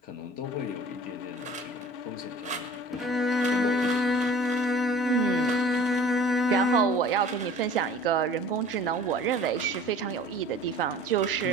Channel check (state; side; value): normal; both; correlation 0.46